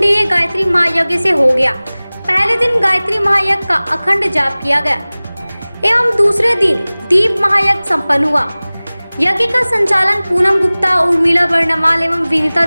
गायत्री महायज्ञ से हो गया। पहले दिन गायत्री महायज्ञ का अखंड जाप किया गया एवं दूसरे दिन दीप महायज्ञ संपन्न हुआ। यज्ञ का संचालन पूनम गुप्ता, उर्मिला बर्णवाल एवं विनीता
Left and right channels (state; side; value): inverted; both; correlation -0.99